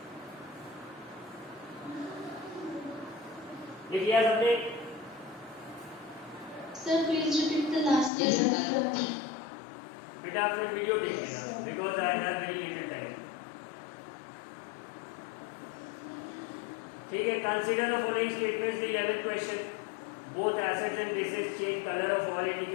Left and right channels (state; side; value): drops out; right; at 8.1 s